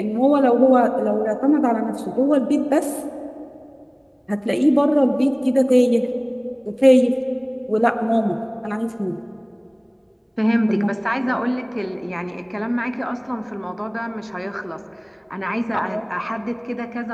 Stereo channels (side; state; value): both; identical; correlation 1.00